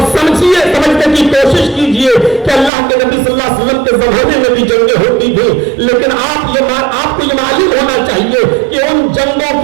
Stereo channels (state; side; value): drops out; left; at 2.7 s